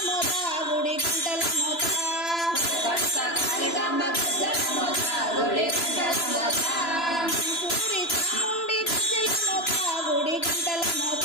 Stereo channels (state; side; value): late; right; 3.0 ms